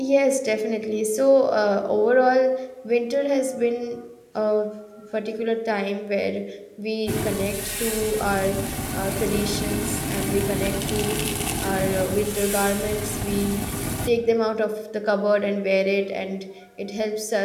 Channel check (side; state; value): both; identical; correlation 1.00